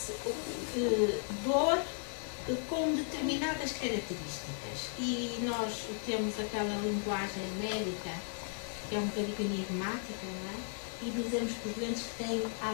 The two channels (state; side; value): silent; right; 54 dB below the other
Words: dor com determinadas características, e nós temos aquela linguagem médica que é um bocadinho enigmática, não é? E dizemos que os doentes têm